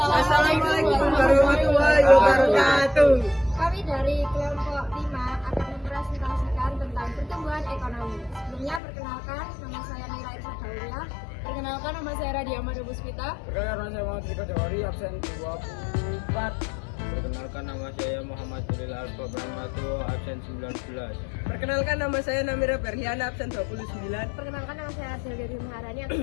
warahmatullahi wabarakatuh. Kami dari kelompok 5 akan mempresentasikan tentang pertumbuhan ekonomi. Sebelumnya perkenalkan, nama saya Nila Irsa Daulia. Perkenalkan, nama saya Radia Mada Puspita. Perkenalkan, saya Muhammad Rika Jawari, absen 24. Perkenalkan, nama saya Muhammad Jalil Alfa Brahmato, absen 19. Perkenalkan, nama saya Namira Berhiana, absen 29. Perkenalkan, nama saya Adelia Maharani,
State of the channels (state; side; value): drops out; right; at 8.8 s